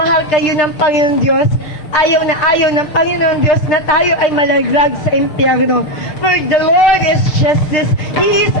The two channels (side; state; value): right; late; 6.6 ms